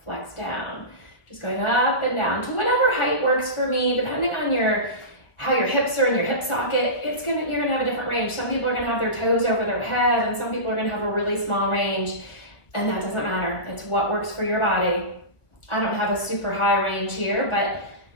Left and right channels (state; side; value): late; right; 1.2 ms